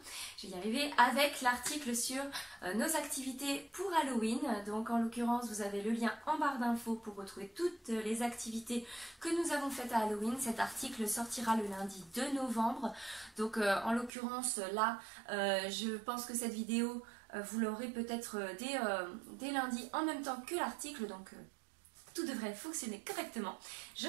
je vais y arriver, avec l'article sur nos activités pour Halloween. Donc en l'occurrence, vous avez le lien en barre d'infos pour retrouver toutes les activités que nous avons faites à Halloween. Cet article sortira le lundi 2 novembre. Donc en l'occurrence, là, je pense que cette vidéo, vous l'aurez peut-être dès lundi en même temps que l'article. Donc tout devrait fonctionner correctement. Je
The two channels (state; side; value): drops out; left; at 14.1 s